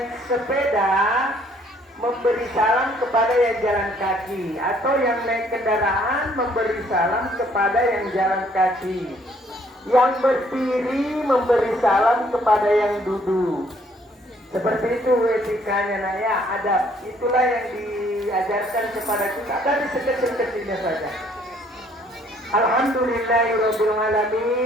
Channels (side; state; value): both; normal; correlation 0.63